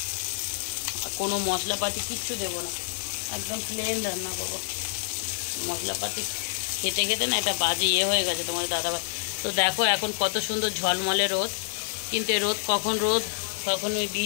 আর কোনো মশলাপাতি কিচ্ছু দেবো না, একদম প্লেন রান্না করবো। মশলাপাতি খেতে না এটা বাজে হয়ে গেছে তোমাদের দাদাভাই। তো দেখো এখন কত সুন্দর ঝলমলে রোদ, কিন্তু এই রোদ কখন ওই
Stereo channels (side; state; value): right; silent; digital silence